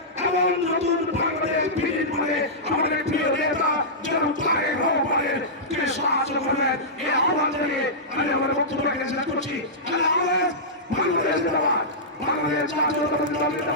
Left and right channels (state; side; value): normal; both; correlation -0.14